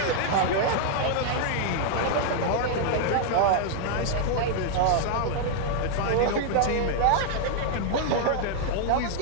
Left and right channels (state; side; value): different; both; correlation 0.00